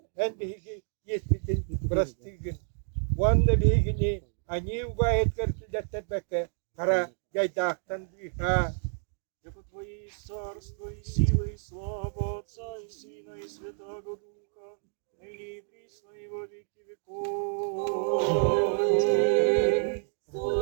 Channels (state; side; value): silent; left; 58 dB below the other